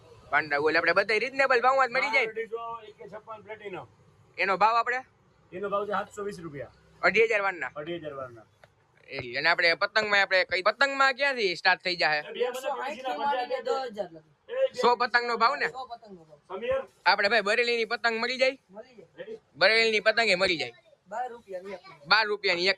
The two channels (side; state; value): both; identical; correlation 1.00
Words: બોલે આપણે બધા રીઝનેબલ ભાવમાં જ મળી જાય। એનો ભાવ આપણે 720 રૂપિયા 2500 વારના અને આપણે પતંગમાં આપણે કઈ પતંગમાં ક્યાંથી સ્ટાર્ટ થઈ જાય 100 પતંગ નો ભાવ ને આપણે ભાઈ બરેલીની પતંગ મળી જાય બરેલીની પતંગ એ મળી જાય 12 રૂપિયાની